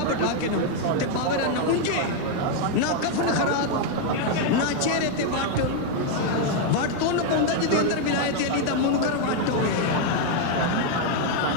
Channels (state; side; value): different; both; correlation 0.00